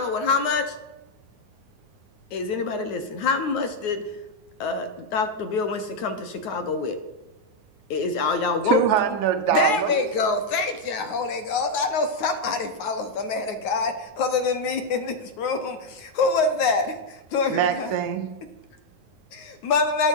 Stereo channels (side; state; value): right; late; 9.5 ms